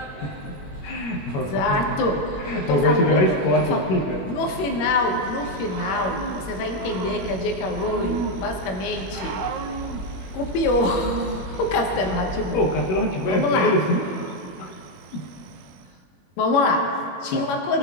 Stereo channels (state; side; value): late; right; 21 ms